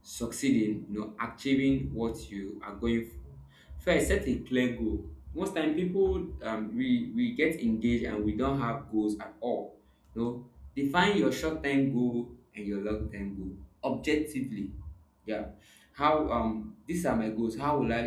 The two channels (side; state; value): both; identical; correlation 1.00